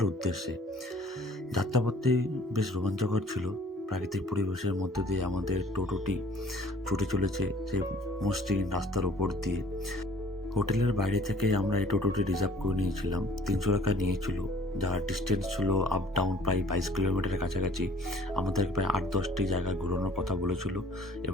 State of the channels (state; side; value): normal; both; correlation 0.53